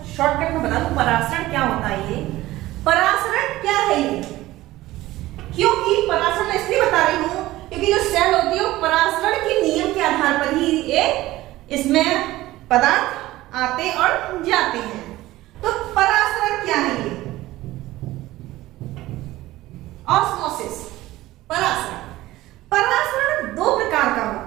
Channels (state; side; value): quieter; left; 16.9 dB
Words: शॉर्टकट में बता दूं परासरण क्या होता है। ये परासरण क्या है ये? क्योंकि परासरण इसलिए बता रही हूं क्योंकि जो सेल होती है वो परासरण के नियम के आधार पर ही इसमें पदार्थ आते और जाते हैं। तो परासरण क्या है ये? ऑस्मोसिस। परासरण परासरण दो प्रकार का